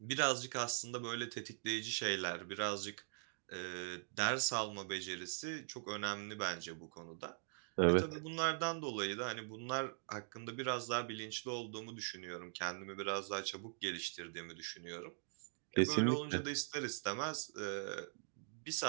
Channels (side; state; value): left; silent; digital silence